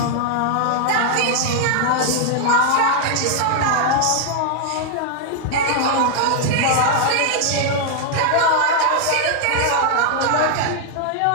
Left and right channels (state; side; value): different; both; correlation 0.00